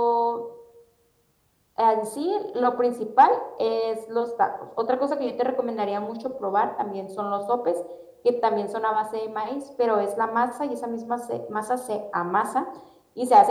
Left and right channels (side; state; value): both; identical; correlation 1.00